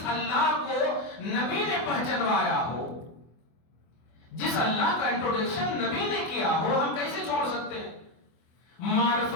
اللہ کو نبی نے پہچنوایا ہو، جس اللہ کا انٹروڈکشن نبی نے کیا ہو، ہم کیسے چھوڑ سکتے ہیں؟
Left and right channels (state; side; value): late; right; 24 ms